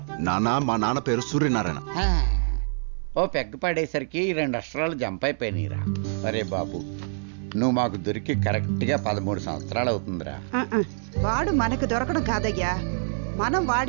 నాన్న, మా నాన్న పేరు సూర్యనారాయణ. ఓ పెగ్గ పడేసరికి 2 అక్షరాలు జంప్ అయిపోయినాయిరా. అరే బాబు, నువ్వు మాకు దొరికి కరెక్ట్గా 13 సంవత్సరాలు అవుతుందిరా. వాడు మనకు దొరకడం కాదయ్యా, మనం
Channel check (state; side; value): silent; left; 61 dB below the other